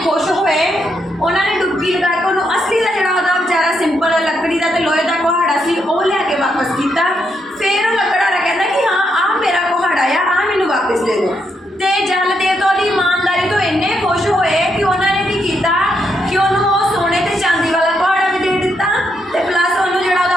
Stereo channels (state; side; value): normal; both; correlation 0.79